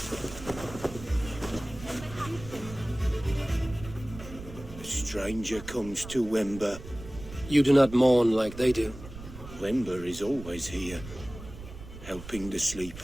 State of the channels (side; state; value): right; noise; rumble, 14 dB below the sound